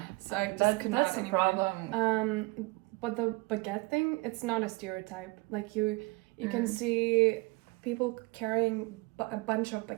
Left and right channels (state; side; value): quieter; left; 25.2 dB